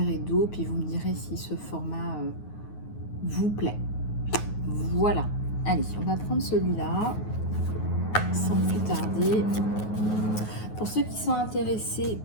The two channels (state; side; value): late; right; 9.4 ms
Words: et d'eau, puis vous me direz si ce format vous plaît. Voilà, allez, on va prendre celui-là sans plus tarder. Pour ceux qui sont intéressés